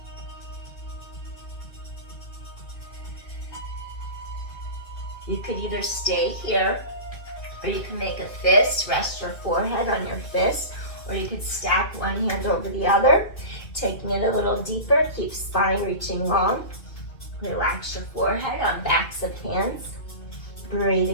You could either stay here, or you can make a fist, rest your forehead on your fist, or you could stack one hand over the other, taking it a little deeper, keep spine reaching long. Relax your forehead on backs of hands.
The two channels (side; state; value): right; late; 2.5 ms